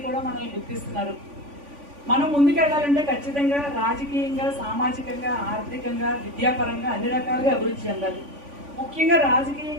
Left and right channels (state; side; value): late; left; 3.5 ms